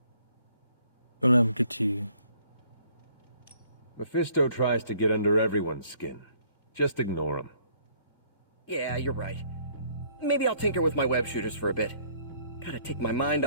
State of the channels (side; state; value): both; inverted; correlation -0.62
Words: Don't let him get to you. Mephisto tries to get under everyone's skin. Just ignore him. Yeah, you're right. Maybe I'll tinker with my web shooters for a bit. Gotta take my mind